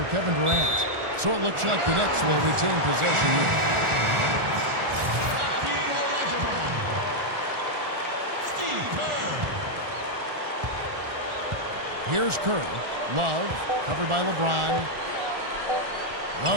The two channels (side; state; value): left; late; 1.4 ms